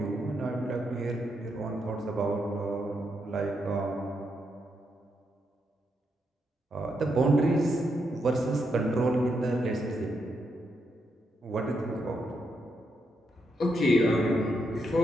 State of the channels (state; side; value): normal; both; correlation 0.81